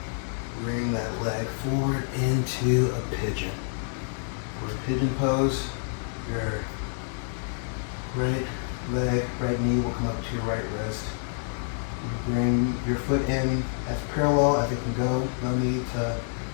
Bring that leg forward into a pigeon. For a pigeon pose, your right leg, right knee will come up to your right wrist. You bring your foot in as parallel as it can go. No need to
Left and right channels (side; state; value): right; silent; 60 dB below the other